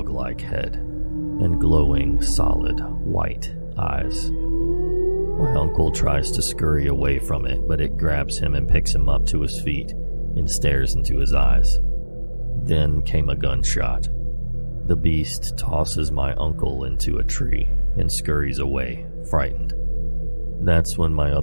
head and glowing, solid, white eyes. My uncle tries to scurry away from it, but it grabs him and picks him up to his feet and stares into his eyes. Then came a gunshot. The beast tosses my uncle into a tree and scurries away, frightened. That's when my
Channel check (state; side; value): inverted; both; correlation -1.00